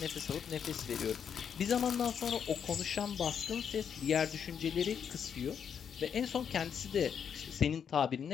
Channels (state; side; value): quieter; right; 7.6 dB